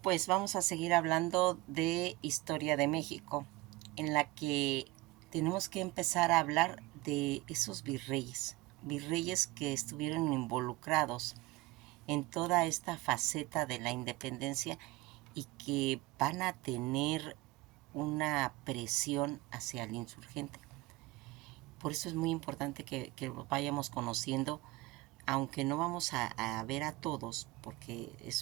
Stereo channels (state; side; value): quieter; left; 19.8 dB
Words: vamos a seguir hablando de historia de México, en la que tenemos que empezar a hablar de esos virreyes que estuvieron involucrados en toda esta faceta de la independencia y que van a tener una presión hacia el insurgente. Por eso es muy importante que lo vayamos conociendo, aunque no vamos a ver a todos, porque